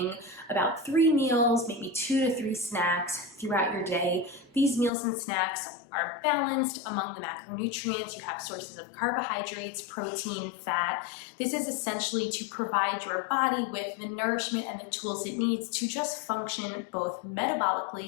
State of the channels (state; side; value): drops out; right; at 4.9 s